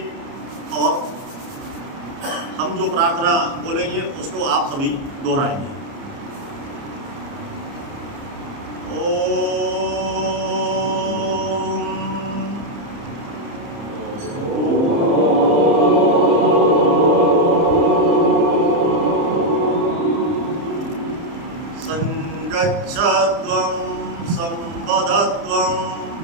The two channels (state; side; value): late; left; 30 ms